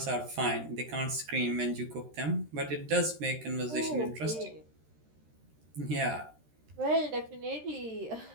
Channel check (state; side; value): late; left; 13 ms